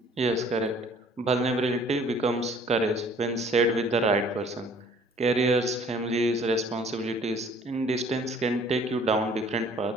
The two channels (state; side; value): normal; both; correlation 0.55